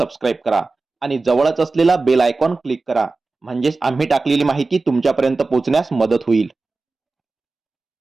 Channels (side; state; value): left; quieter; 3.7 dB